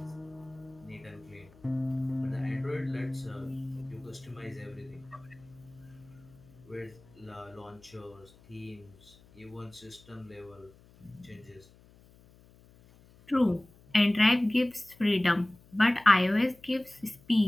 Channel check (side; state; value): left; noise; hum, 26 dB below the sound